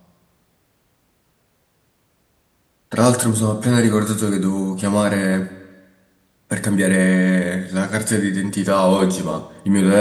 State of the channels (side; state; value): both; identical; correlation 1.00